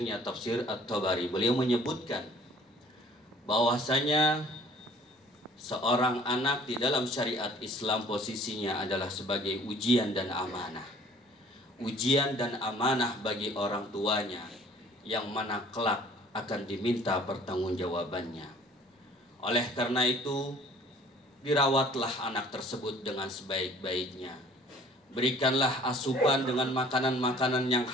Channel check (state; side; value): normal; both; correlation 0.53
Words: Tafsir At-Tabari, beliau menyebutkan bahwasanya seorang anak di dalam syariat Islam posisinya adalah sebagai ujian dan amanah. Ujian dan amanah bagi orang tuanya, yang mana kelak akan diminta pertanggungjawabannya. Oleh karena itu, dirawatlah anak tersebut dengan sebaik-baiknya. Berikanlah asupan dengan makanan-makanan yang